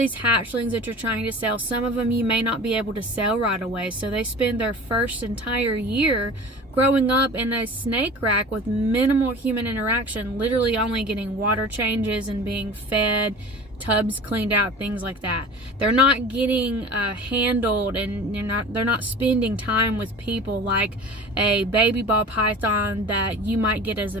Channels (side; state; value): both; normal; correlation 0.38